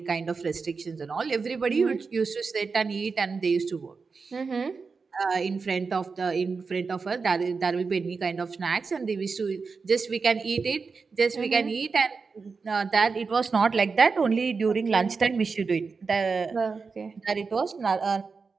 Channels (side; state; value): left; quieter; 4.8 dB